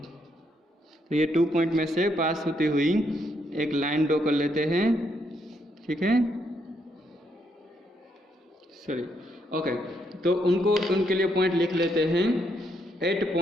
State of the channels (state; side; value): normal; both; correlation 0.75